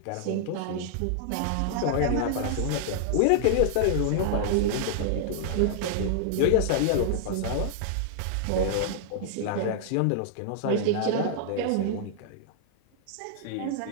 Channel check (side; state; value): both; different; correlation -0.01